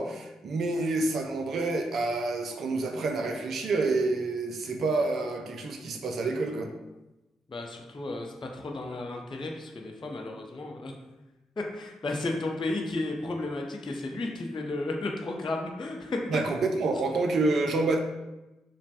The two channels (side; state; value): both; normal; correlation 0.78